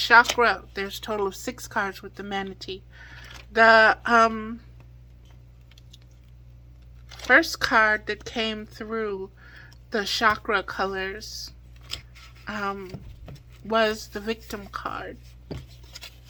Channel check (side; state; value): both; identical; correlation 1.00